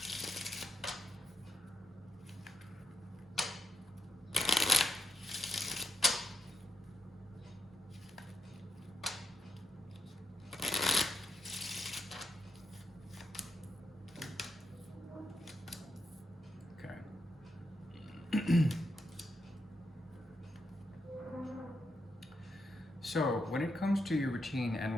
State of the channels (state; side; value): normal; both; correlation 0.83